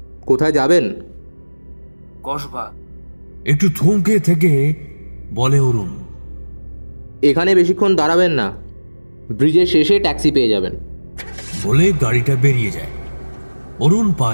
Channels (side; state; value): both; inverted; correlation -1.00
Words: কোথায় যাবেন? কসবা। একটু থমকে থেকে বলে অরুণ। এখানে বেশিক্ষণ দাঁড়াবেন না, ব্রিজের শেষে ট্যাক্সি পেয়ে যাবেন। বলে গাড়িটা বেরিয়ে যায়। অরুণ পা